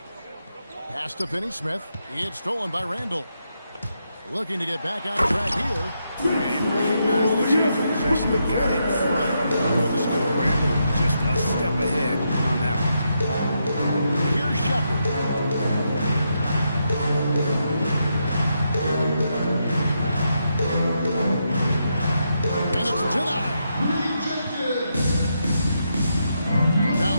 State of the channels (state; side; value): inverted; both; correlation -0.82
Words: Pass to Finney-Smith. It's stolen by Randall. Looking to get back on track here. And recognize the change of possession. They got in front for the score. Randall just a step ahead on that one. Here's Shepard. And it's denied. Down